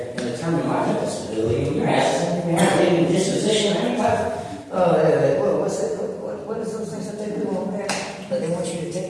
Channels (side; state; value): both; identical; correlation 1.00